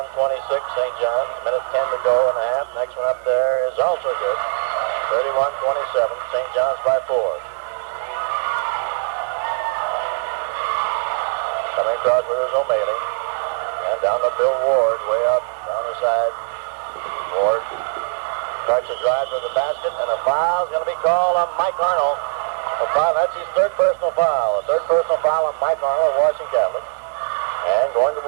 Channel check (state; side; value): silent; left; digital silence